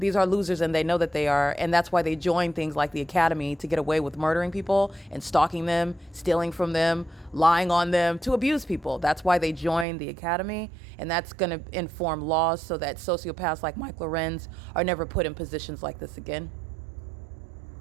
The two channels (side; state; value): left; drops out; at 9.9 s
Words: losers, and they know that they are, and that's why they join things like the academy to get away with murdering people and stalking them, stealing from them, lying on them, to abuse people. That's why they join the academy, and that's going to inform laws so that sociopaths like Mike LORENZ are never put in positions like this again.